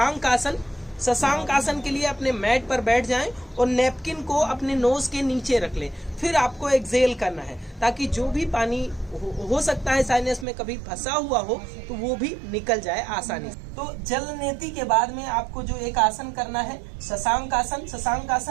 आसन। शशांक आसन के लिए अपने मैट पर बैठ जाएं और नैपकिन को अपने नोज के नीचे रख लें। फिर आपको एक्सहेल करना है ताकि जो भी पानी हो सकता है साइनस में कभी फंसा हुआ हो तो वो भी निकल जाए आसानी से। तो जल नेती के बाद में आपको जो एक आसन करना है शशांक आसन। शशांक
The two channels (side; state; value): left; drops out; at 10.5 s